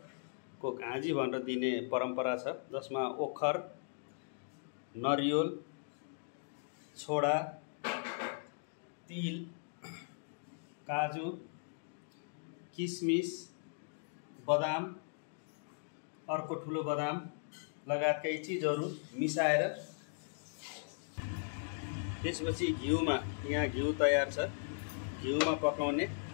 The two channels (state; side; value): silent; right; digital silence